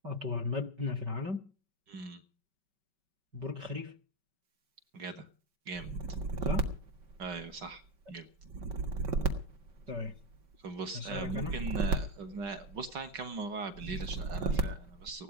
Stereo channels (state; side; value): late; left; 5.2 ms